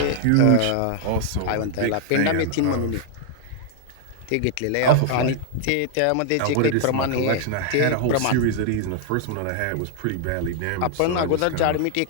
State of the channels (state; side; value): different; both; correlation 0.00